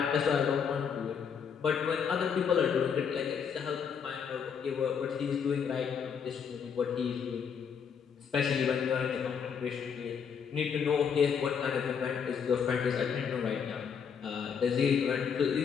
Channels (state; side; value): quieter; right; 6.9 dB